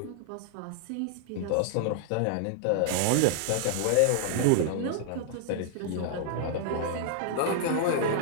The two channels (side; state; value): both; different; correlation -0.01